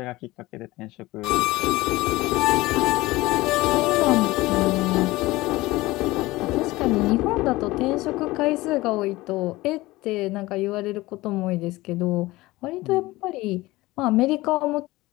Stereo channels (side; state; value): right; quieter; 19.5 dB